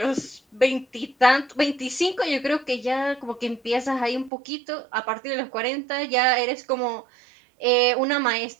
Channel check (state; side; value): drops out; left; at 4.3 s